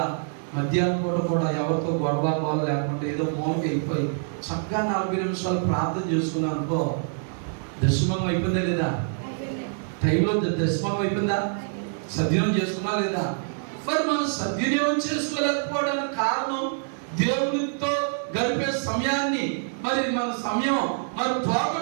మధ్యాహ్నం పూట కూడా ఎవరితో గొడవ లేకుండా ఏదో మౌనకి వెళ్ళిపోయి చక్కగా 40 నిమిషాలు ప్రార్థన చేసుకున్నాను అనుకో, దశమం అయిపోయిందా లేదా? టైంలో దశమం అయిపోయిందా? సద్వినియోగం చేసుకున్నా లేదా? మరి మనం సద్వినియోగం చేసుకోలేకపోవడానికి కారణం దేవునితో గడిపే సమయాన్ని మరి మన సమయం మరి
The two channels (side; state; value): left; silent; digital silence